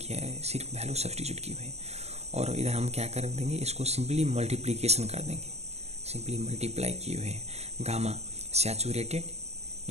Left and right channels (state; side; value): late; left; 0.31 ms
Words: है, सिर्फ वैल्यू सब्सटीट्यूट की हुई है। और इधर हम क्या कर देंगे, इसको सिंपली मल्टीप्लीकेशन कर देंगे, सिंपली मल्टीप्लाई किए हुए हैं। Gamma saturated